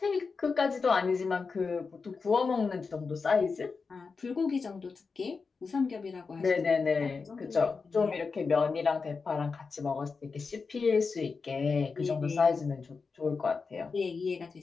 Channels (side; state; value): right; quieter; 4.8 dB